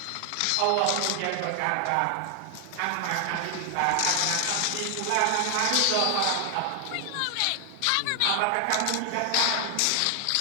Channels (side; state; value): both; different; correlation 0.00